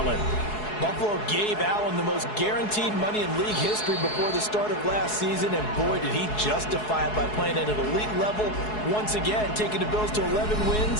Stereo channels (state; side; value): late; right; 4.7 ms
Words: Buffalo gave Allen the most guaranteed money in league history before the start of last season, and boy, did he justify it by playing at an elite level once again, taking the Bills to 11